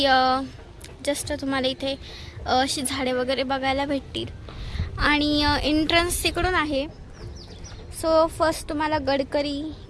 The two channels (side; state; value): both; identical; correlation 1.00